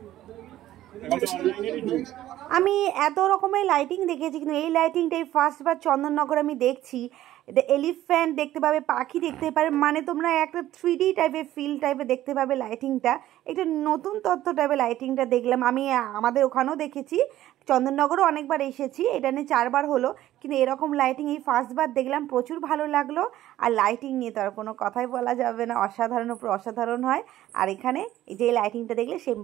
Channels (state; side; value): quieter; left; 13.9 dB